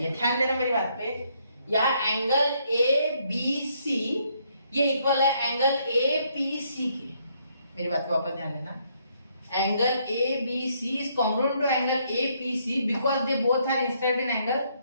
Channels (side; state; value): both; inverted; correlation -0.71